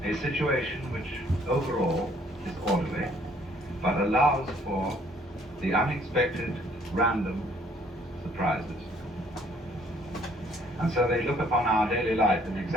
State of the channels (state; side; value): normal; both; correlation 0.62